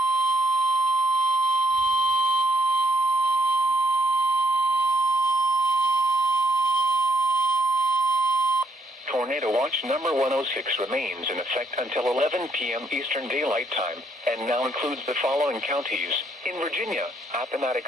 Tornado Watch number 106 remains in effect until 11 p.m. Eastern Daylight Time, and now includes the following counties: in Virginia,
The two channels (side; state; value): both; normal; correlation 0.70